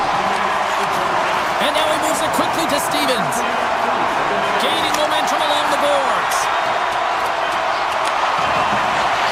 And now he moves it quickly to Stevens. Gaining momentum along the boards.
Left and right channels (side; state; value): both; identical; correlation 1.00